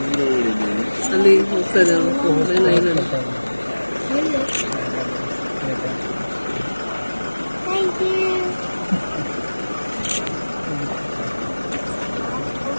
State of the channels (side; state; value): both; inverted; correlation -1.00